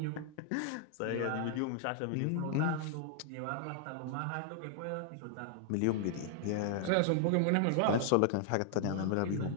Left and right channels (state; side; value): different; both; correlation 0.00